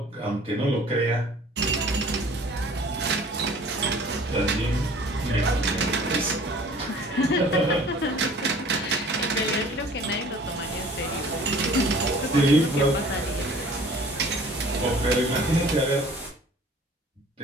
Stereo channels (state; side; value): normal; both; correlation 0.49